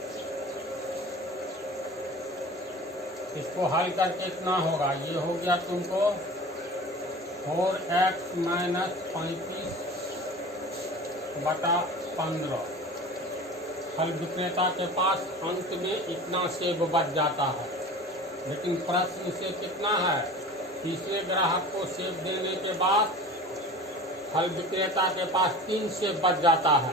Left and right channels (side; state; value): both; normal; correlation 0.38